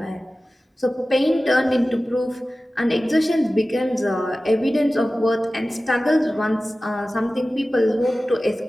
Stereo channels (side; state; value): both; normal; correlation 0.96